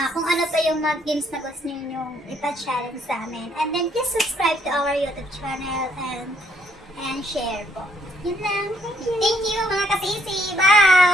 kung ano pa yung mga games na gusto niyo ipa-challenge sa amin. And then please subscribe to our YouTube channel and share po. Yun lang. Thank you mga kasisi.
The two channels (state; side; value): normal; both; correlation 0.68